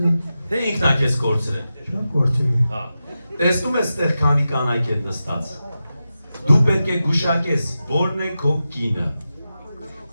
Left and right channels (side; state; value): both; inverted; correlation -0.92